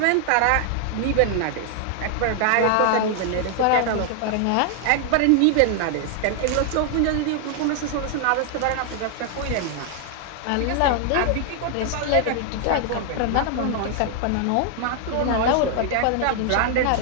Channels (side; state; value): both; different; correlation 0.00